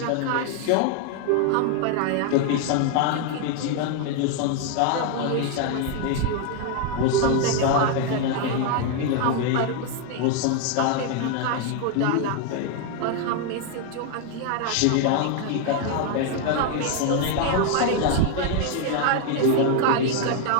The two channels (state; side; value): different; both; correlation 0.00